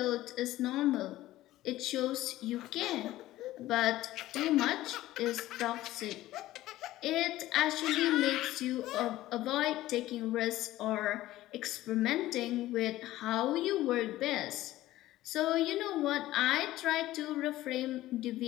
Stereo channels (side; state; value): right; quieter; 15.6 dB